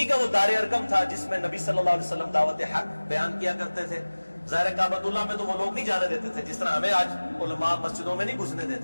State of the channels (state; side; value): inverted; both; correlation -1.00